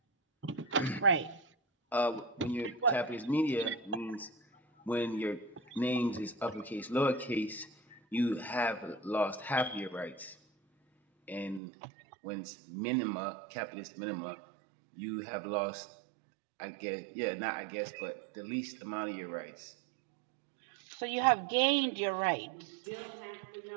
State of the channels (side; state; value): left; drops out; at 11.6 s